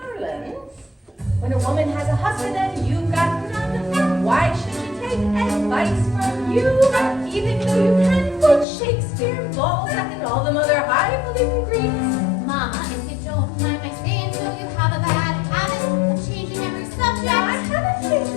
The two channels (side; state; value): right; drops out; at 8.7 s